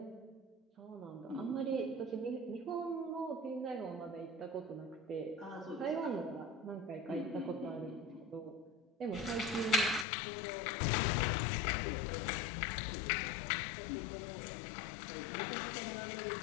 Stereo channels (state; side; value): drops out; right; at 10.1 s